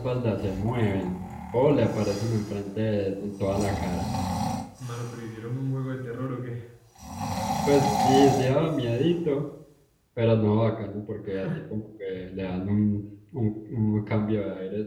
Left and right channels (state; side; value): identical; both; correlation 1.00